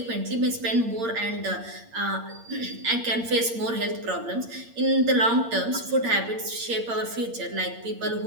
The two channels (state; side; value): late; left; 8.7 ms